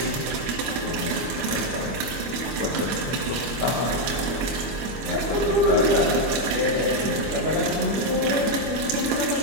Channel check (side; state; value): left; late; 25 ms